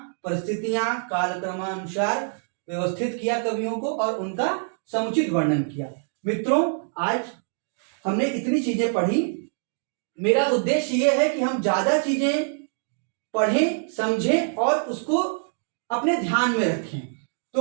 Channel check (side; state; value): left; silent; digital silence